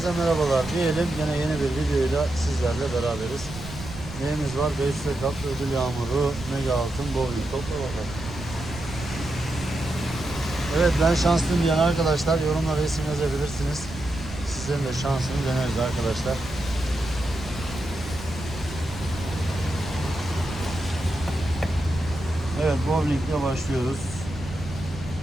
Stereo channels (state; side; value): noise; right; rumble, 12 dB below the sound